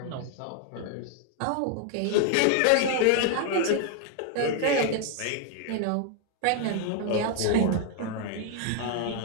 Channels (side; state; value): both; different; correlation 0.00